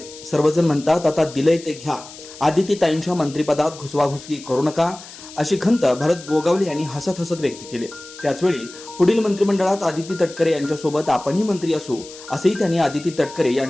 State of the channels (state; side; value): noise; left; hiss, 17 dB below the sound